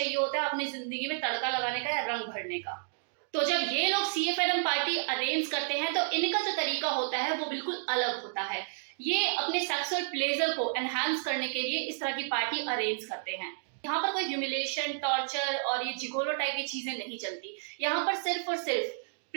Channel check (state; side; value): silent; left; digital silence